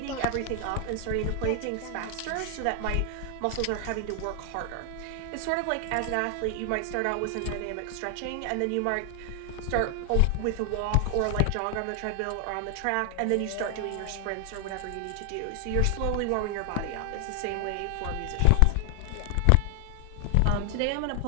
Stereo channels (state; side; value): different; both; correlation 0.00